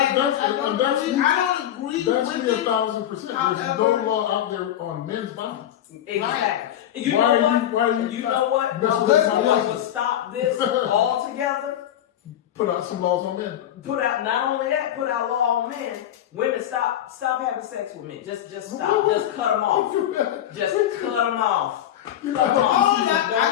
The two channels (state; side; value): quieter; right; 11.4 dB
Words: don't agree that's with me it. 1,000%. There's However, no law out there on men's bodies. Exactly. You Why know are what? you- why are you You know what? not- What would stop this altogether? Put out some laws on men. Put out not only that, put out law on men. Women, stop having sex with men. Just stop. Just cut them off. Just cut them off. Cut them off. I